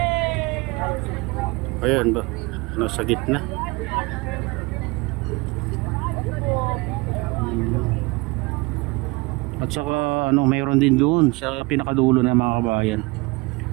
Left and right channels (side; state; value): left; quieter; 25.5 dB